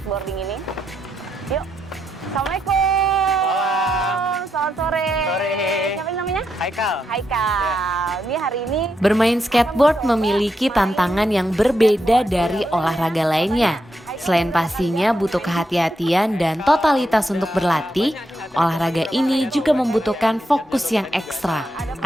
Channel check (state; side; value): normal; both; correlation 0.82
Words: ini. Yuk, Assalamualaikum. Selamat sore. Siapa namanya? Haikal. Haikal. Ini hari ini Bermain skateboard memiliki tantangan yang berbeda dari olahraga lainnya. Selain pastinya butuh kehati-hatian dan totalitas untuk berlatih, olahraga ini juga membutuhkan fokus yang ekstra